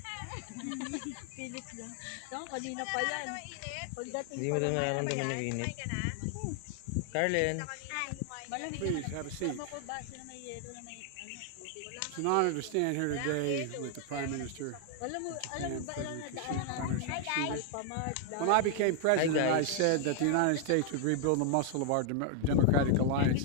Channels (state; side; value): different; both; correlation 0.00